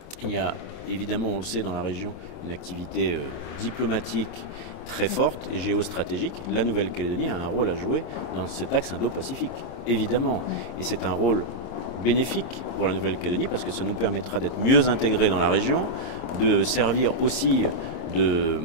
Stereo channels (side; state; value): right; late; 26 ms